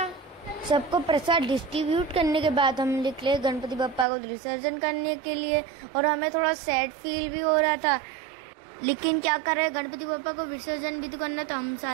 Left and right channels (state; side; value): drops out; left; at 4.0 s